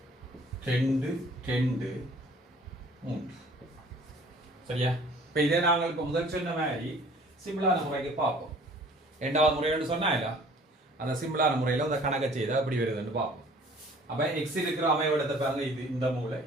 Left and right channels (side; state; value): both; normal; correlation 0.52